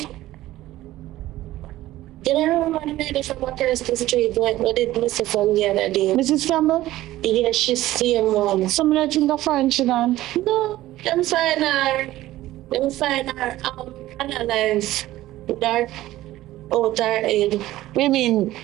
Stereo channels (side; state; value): left; quieter; 15.6 dB